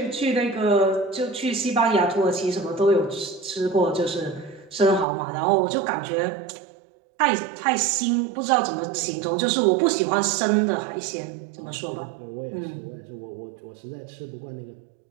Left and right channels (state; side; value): drops out; left; at 5.1 s